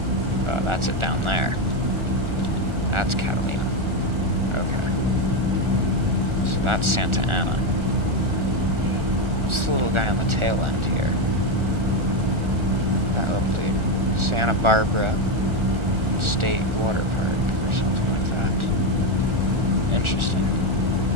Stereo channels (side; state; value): left; late; 1.4 ms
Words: That's it down there. That's Catalina. Okay. So that's Santa Ana. What's the little guy on the tail end here? That little dude. Santa Barbara State Water Park or something like that. Interesting.